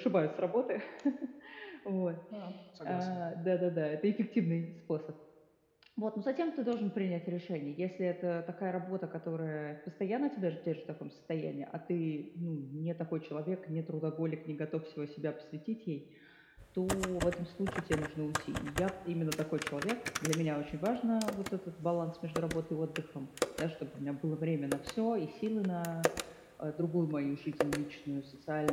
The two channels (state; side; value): identical; both; correlation 1.00